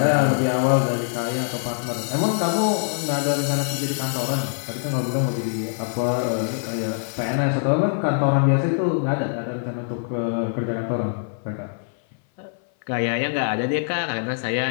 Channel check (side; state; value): right; silent; 58 dB below the other